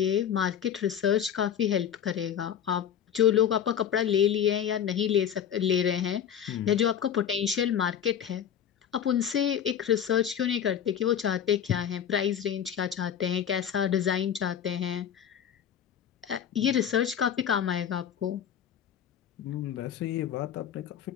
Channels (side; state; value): right; quieter; 9.0 dB